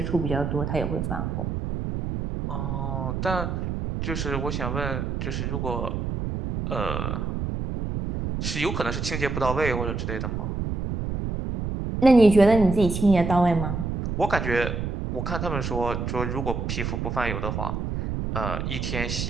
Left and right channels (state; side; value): noise; right; rumble, 3 dB below the sound